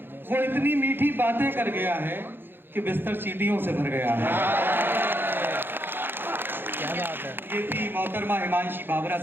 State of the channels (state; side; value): late; left; 0.10 ms